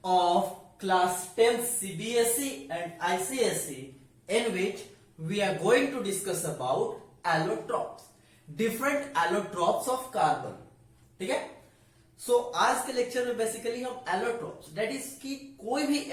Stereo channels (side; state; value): both; identical; correlation 1.00